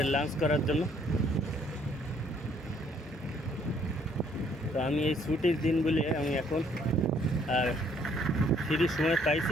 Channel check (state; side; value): normal; both; correlation 0.64